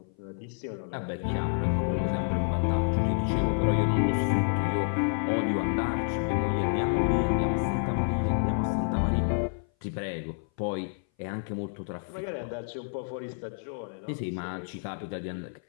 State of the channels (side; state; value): right; silent; 57 dB below the other